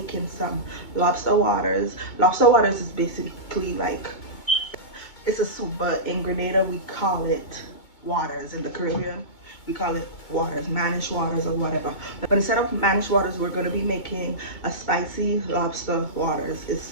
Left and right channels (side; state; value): right; late; 2.2 ms